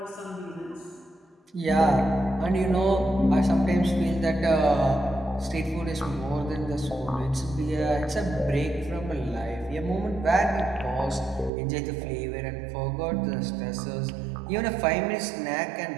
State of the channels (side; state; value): left; drops out; at 11.5 s